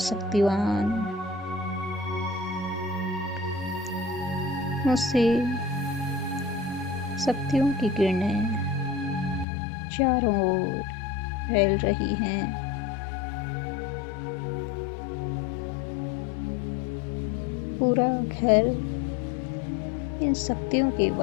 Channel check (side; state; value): right; drops out; at 9.5 s